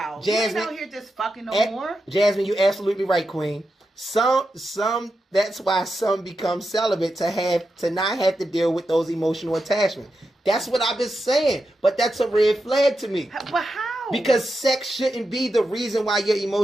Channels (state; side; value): normal; both; correlation 0.88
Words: Jasmine, you ain't out here just fucking no more. Jasmine, you're absolutely right, Queen. Some that's why some become celibate to not have to deal with those emotional attachments. That's what I've been saying. But that's a red flag to me. But how? Because sex shouldn't be the reason why you're